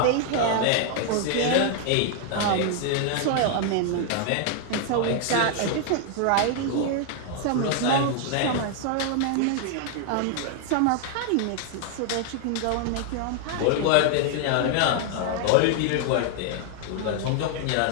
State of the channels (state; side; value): different; both; correlation 0.00